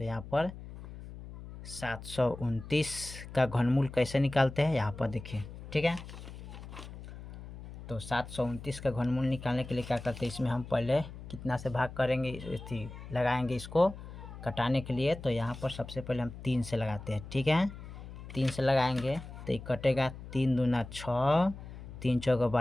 यहाँ पर 729 का घनमूल कैसे निकालते हैं, यहाँ पर देखिए। ठीक है, तो 729 का घनमूल निकालने के लिए क्या करते हैं, इसमें हम पहले कितना से भाग करेंगे, लगाएंगे इसको कटाने के लिए। तो यहाँ पर सबसे पहले हम 3 से लगाते हैं। ठीक है, 3 से लगाएंगे तो ये कटेगा, 3 दूना 6, 3 चौका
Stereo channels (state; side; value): noise; left; hum, 13 dB below the sound